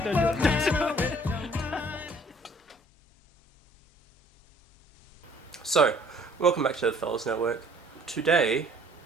Don't do it. So, welcome back to the Fellas Network. Today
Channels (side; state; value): both; normal; correlation 0.57